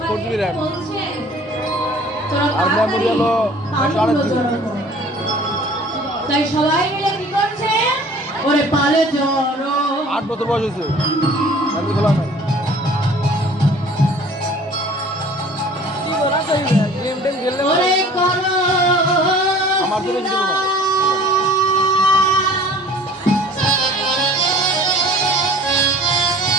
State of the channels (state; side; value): normal; both; correlation 0.48